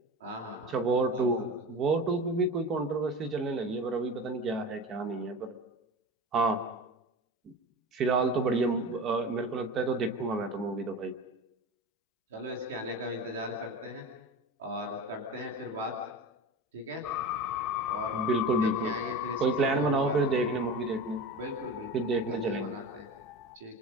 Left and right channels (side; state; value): both; normal; correlation 0.30